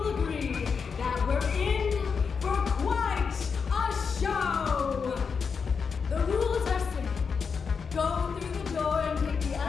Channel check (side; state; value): right; quieter; 5.7 dB